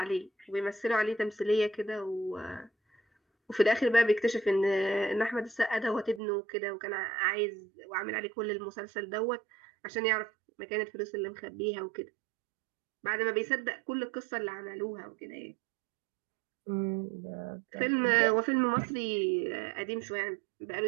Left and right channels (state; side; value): drops out; left; at 6.2 s